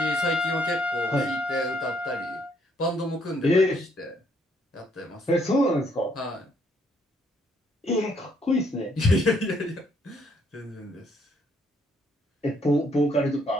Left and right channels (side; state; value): both; normal; correlation 0.69